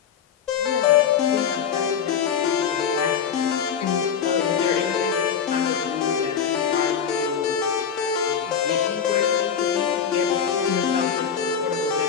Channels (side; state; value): right; quieter; 7.6 dB